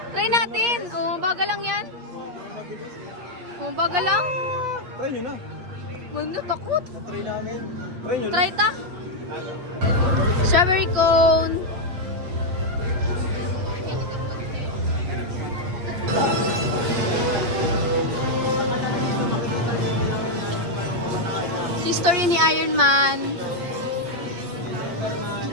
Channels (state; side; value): late; left; 8.3 ms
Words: Try natin. Oh, baga lang yan. Oh, baga lang. Try nyo na. Wala, takot. Try namin. Try nyo na. Try ta. Strawberry cone. History ni Iron Man.